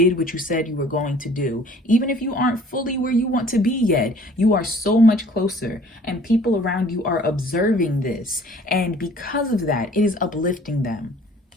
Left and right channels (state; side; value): normal; both; correlation 0.52